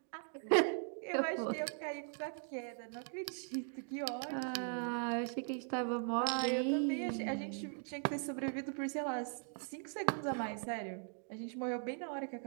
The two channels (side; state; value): left; silent; 51 dB below the other